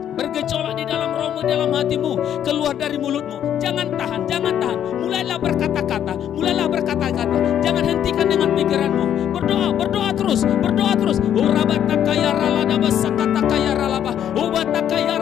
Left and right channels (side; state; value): right; quieter; 10.0 dB